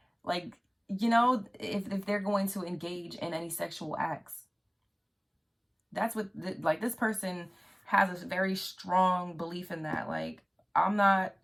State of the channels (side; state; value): both; identical; correlation 1.00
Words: like, if they're going to engage in any sexual acts. That's what, like, this person has a very strong belief in that. Like, I'm not